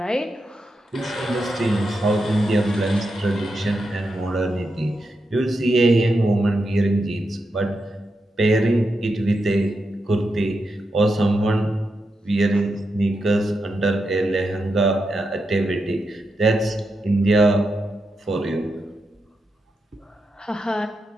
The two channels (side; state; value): both; normal; correlation 0.86